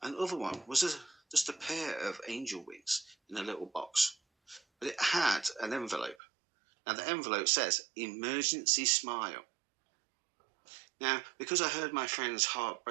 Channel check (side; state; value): left; drops out; at 6.2 s